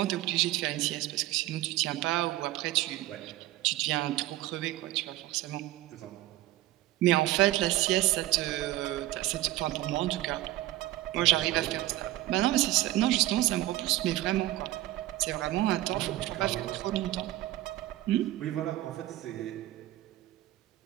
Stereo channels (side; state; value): left; quieter; 16.0 dB